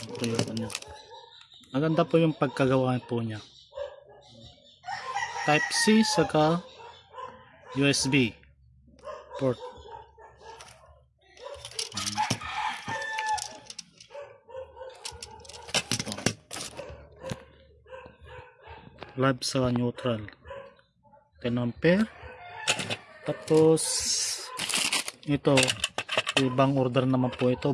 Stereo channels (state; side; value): identical; both; correlation 1.00